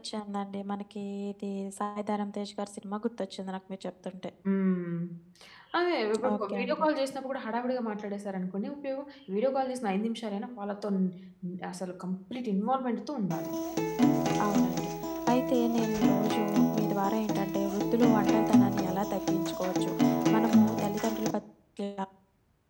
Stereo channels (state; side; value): identical; both; correlation 1.00